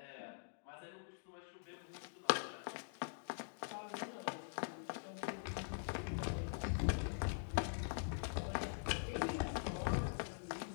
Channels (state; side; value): silent; right; digital silence